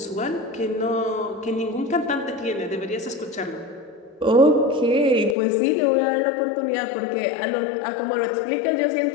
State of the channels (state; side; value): drops out; right; at 5.4 s